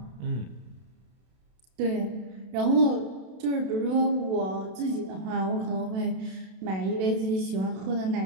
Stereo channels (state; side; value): late; left; 32 ms